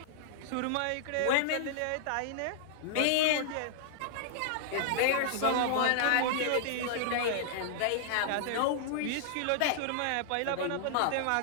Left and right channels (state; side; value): different; both; correlation -0.01